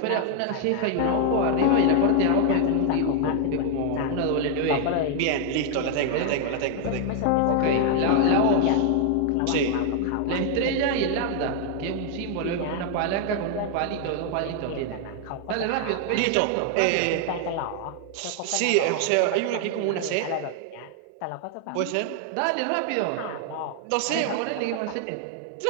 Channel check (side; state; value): both; different; correlation 0.00